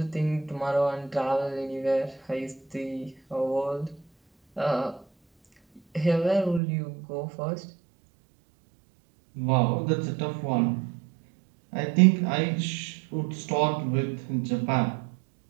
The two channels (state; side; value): drops out; left; at 6.6 s